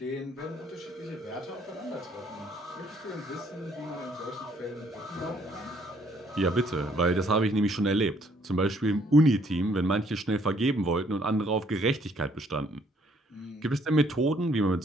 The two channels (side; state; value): both; normal; correlation 0.65